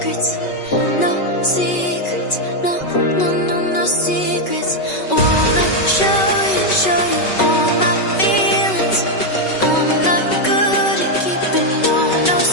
No secrets, no, no, no, no secrets. Wanna show you all my feelings. I'm not good at keeping no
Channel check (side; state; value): right; late; 5.3 ms